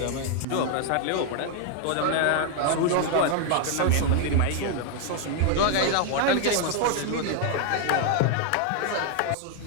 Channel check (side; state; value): both; different; correlation 0.00